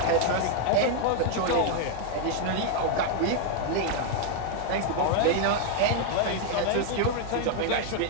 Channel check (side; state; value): both; different; correlation 0.00